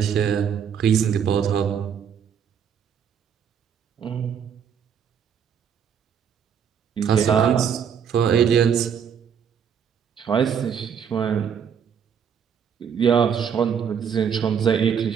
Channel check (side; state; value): left; quieter; 7.6 dB